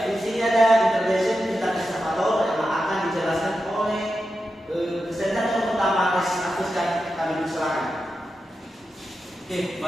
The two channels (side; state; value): both; normal; correlation 0.90